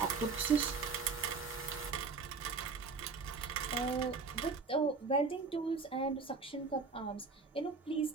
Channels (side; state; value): left; quieter; 4.6 dB